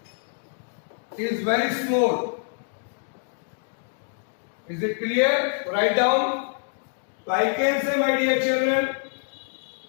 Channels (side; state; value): right; silent; 61 dB below the other